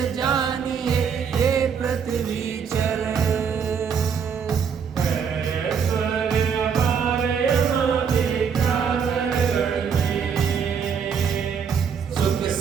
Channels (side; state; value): left; quieter; 6.9 dB